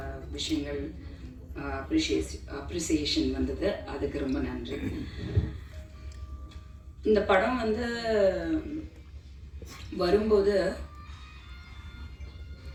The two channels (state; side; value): identical; both; correlation 1.00